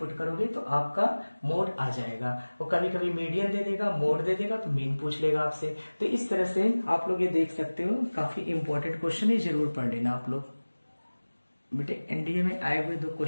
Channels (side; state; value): both; inverted; correlation -1.00